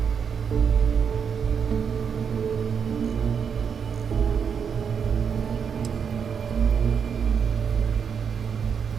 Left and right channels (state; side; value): quieter; left; 6.9 dB